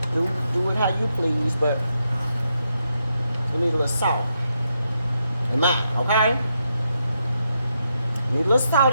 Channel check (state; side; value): inverted; both; correlation -0.82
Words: do it how you please, but you need a little salt in mine, okay? Need a little salt